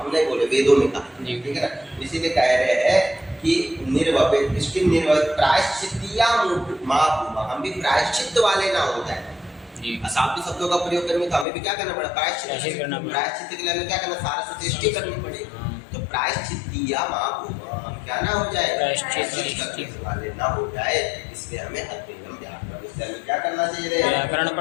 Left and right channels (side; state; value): right; drops out; at 11.5 s